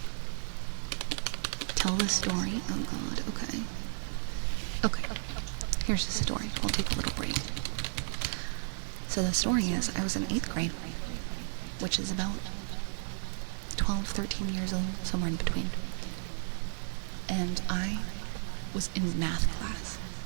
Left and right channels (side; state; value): left; silent; 56 dB below the other